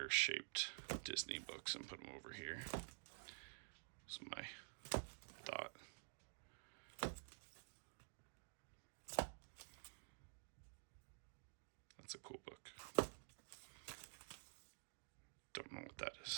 shaped Disney books and put them over here. That's my thought. That's a cool book. Don't know what that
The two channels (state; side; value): silent; left; digital silence